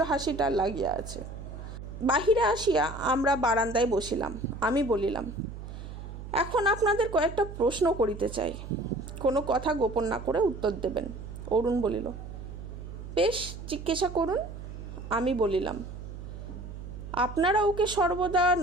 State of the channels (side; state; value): right; noise; hum, 11 dB below the sound